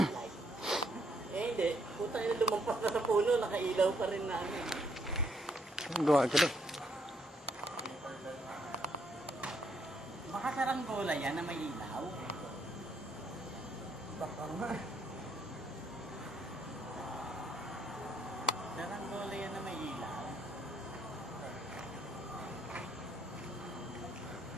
Eh hindi, puta yun lumampas na sa puno, nakailaw pa rin na ano. Gawa ka doon. Baka saranggola yan na may ilaw. Baka nga. Saranggola yan na may ilaw.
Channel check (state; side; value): normal; both; correlation 0.72